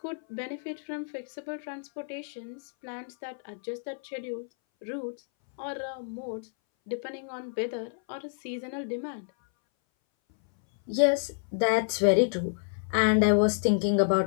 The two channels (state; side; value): silent; right; 58 dB below the other